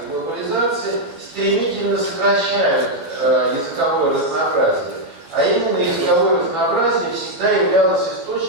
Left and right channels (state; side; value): late; left; 12 ms